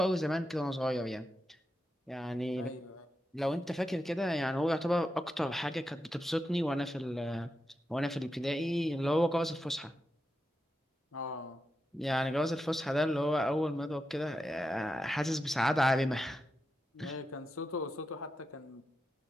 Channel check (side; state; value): both; normal; correlation 0.88